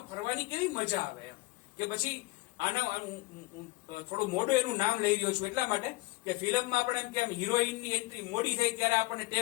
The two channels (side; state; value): right; quieter; 22.1 dB